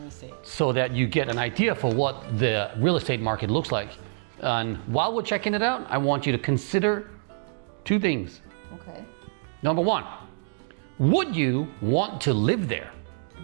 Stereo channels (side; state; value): left; silent; digital silence